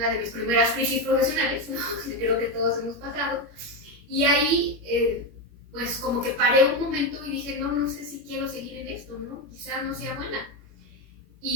de mis primeras crisis profesionales, ¿no? Creo que todos hemos pasado, y ahí pues como que paré un momento y dije, no sé si quiero seguir en esto, ¿no? Quizá no sea buena.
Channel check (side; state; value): left; late; 21 ms